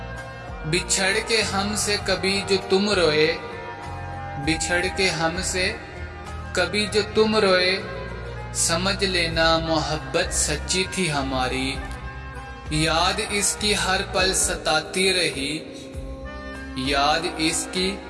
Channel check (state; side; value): identical; both; correlation 1.00